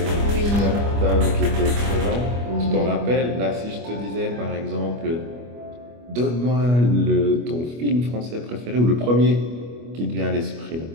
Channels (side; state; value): left; late; 25 ms